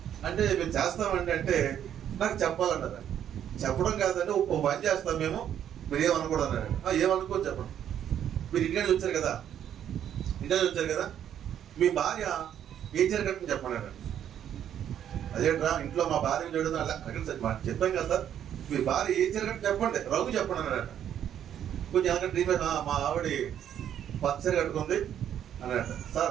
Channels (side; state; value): left; quieter; 9.9 dB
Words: అంటే, మేము చేస్తామండి అంటే నాకు చెప్పాలన్నారు. చెప్పడం కాదంటే ఓ పని చేస్తాం మేము, మీరు ఏమనుకోడు అన్నాడు. ఏమనుకోని చెప్పండి. మీరు ఇండియా వచ్చారు కదా, మీ భార్య ఏ చీర కట్టుకుని చెప్పండి. అదేంట్రా ఇంట్లో మా భార్య చూడదు అలా చెప్పాం కదా సార్, మీ భార్య ఏ చీర కట్టు చెప్పండి, రంగు చెప్పండి అన్నాడట. కొంచెం వెనక డ్రీమ్ మా ఆవిడ పచ్చరి కట్టుకుంది అన్నట.